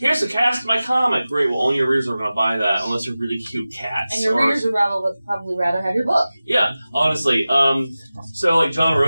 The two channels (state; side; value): inverted; both; correlation -0.96